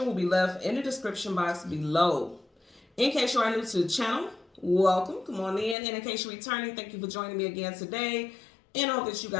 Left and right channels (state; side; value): drops out; right; at 5.8 s